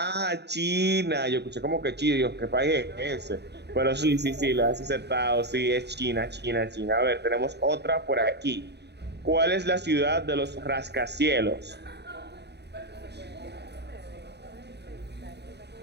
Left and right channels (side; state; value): left; late; 0.49 ms